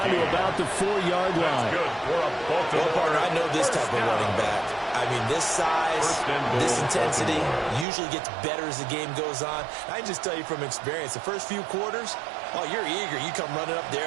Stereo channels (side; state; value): left; drops out; at 7.9 s